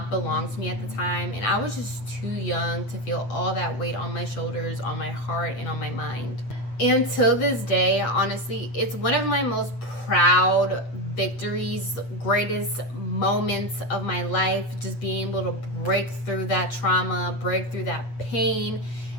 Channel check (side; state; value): right; late; 8.4 ms